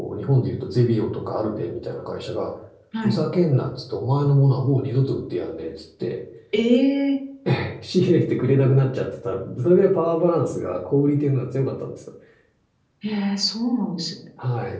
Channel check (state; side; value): identical; both; correlation 1.00